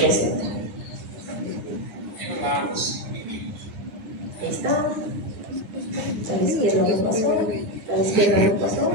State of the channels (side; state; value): left; late; 9.6 ms